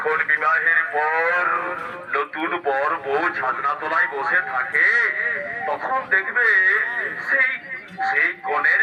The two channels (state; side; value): identical; both; correlation 1.00